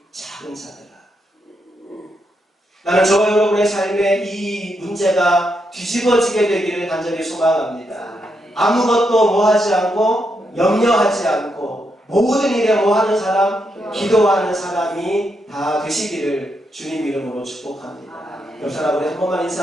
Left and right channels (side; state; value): both; normal; correlation 0.81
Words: 작은 자들아. 나는 저와 여러분의 삶에 이 문제가 뒤집어지게 되기를 간절히 소망합니다. 아무것도 뭐 하지 않고 염려하지 않고 모든 일에 뭐 하는 사람? 기도하는 사람이 다 되시기를 주님 이름으로 축복합니다. 옆 사람 우리 한 번만